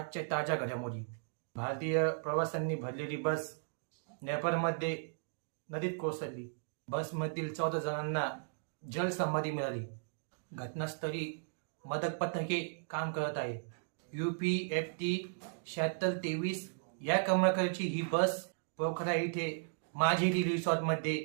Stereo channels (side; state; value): left; silent; digital silence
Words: ताज्या घडामोडी. भारतीय प्रवाशांनी भरलेली बस नेपाळमध्ये नदीत कोसळली. बसमधील 14 जणांना जलसमाधी मिळाली. घटनास्थळी मदत पथके काम करत आहे. UPFT 7623 या क्रमांकाची ही बस पोखरा येथे माझेरी